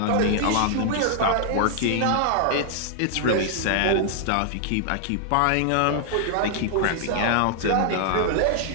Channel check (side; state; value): both; different; correlation 0.00